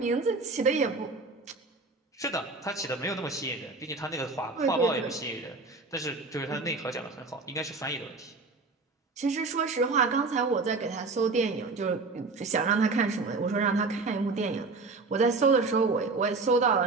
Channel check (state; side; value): quieter; left; 3.8 dB